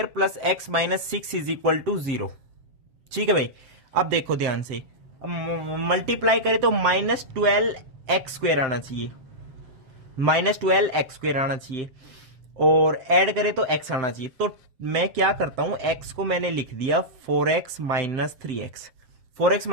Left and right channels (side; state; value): left; late; 7.7 ms